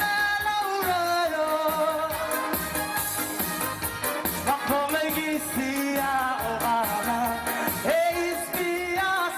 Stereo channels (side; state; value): both; identical; correlation 1.00